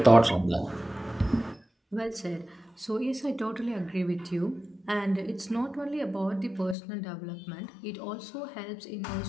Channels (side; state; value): right; drops out; at 6.8 s